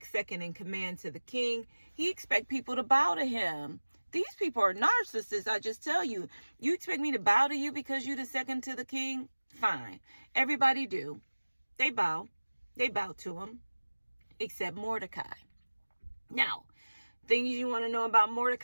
in command to the king, he expects people to bow to him. These people are narcissists, I just tell you. You expect me to bow to you because you're the second to the king? Fine. Everybody do. They bow. They bow to him. Except Mordecai. Now, things you want to know about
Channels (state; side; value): inverted; both; correlation -1.00